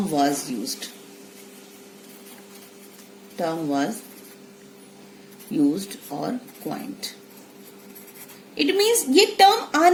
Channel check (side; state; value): both; identical; correlation 1.00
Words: was used or coined. It means ये टर्म